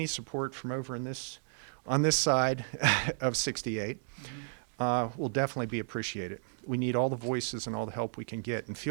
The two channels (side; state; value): left; silent; digital silence